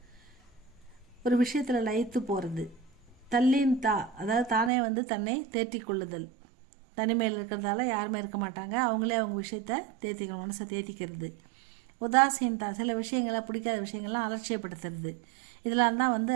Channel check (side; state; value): left; drops out; at 4.7 s